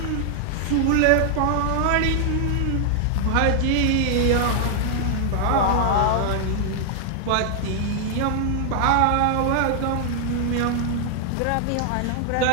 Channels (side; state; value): both; different; correlation -0.01